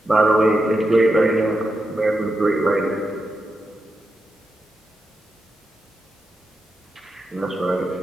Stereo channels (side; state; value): both; normal; correlation 0.87